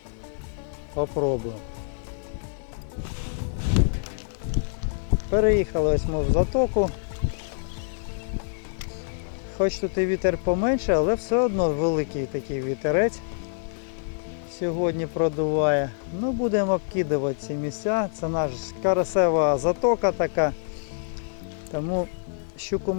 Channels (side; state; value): right; silent; digital silence